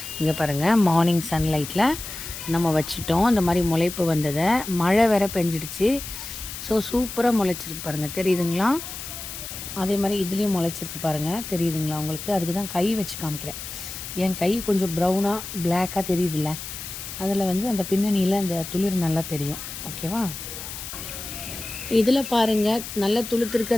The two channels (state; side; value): noise; left; hiss, 9 dB below the sound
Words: இங்கே பாருங்கள் மார்னிங் சன்லைட்டில் நம்ம வச்சுட்டோம். இந்த மாதிரி முளைப்பு வந்ததை மழை வேற பெஞ்சிடுச்சு. ஸோ சூப்பராக முளைச்சிருக்கு பாருங்கள், தெரியுதுங்களா? அதே மாதிரி இதுலேயும் முளைச்சிருக்கு பாருங்கள், தெரியுதுங்களா உங்களுக்கு? அதுக்கு தான் கை வச்சு காமிக்கிறேன். என் கை கொஞ்சம் ப்ரௌனாக பிளாக்காக தெரியுதுல்ல, அதில் வந்து அந்த பின்னணியில் அந்த துளிர் நல்லா தெரியும். ஓகேவா? இதில் பாருங்கள், நல்லா துளுத்துருக்கு.